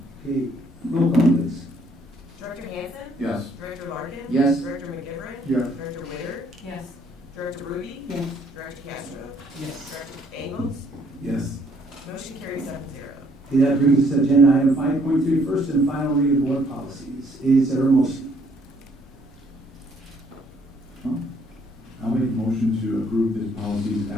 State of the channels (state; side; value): normal; both; correlation 0.65